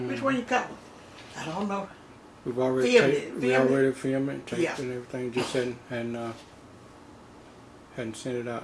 one you call it? I don't know. We've already filmed it, taped it and everything. Just hadn't sent it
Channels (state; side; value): identical; both; correlation 1.00